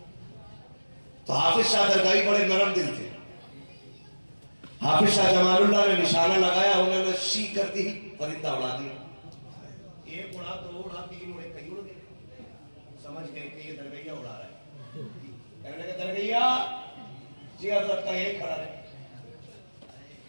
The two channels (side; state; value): both; inverted; correlation -1.00